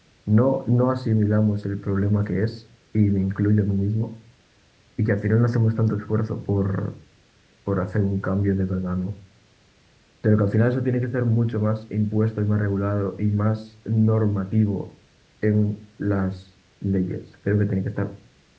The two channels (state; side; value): identical; both; correlation 1.00